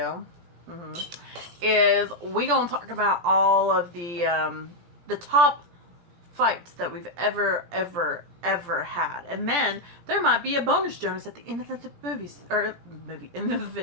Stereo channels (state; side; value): late; left; 17 ms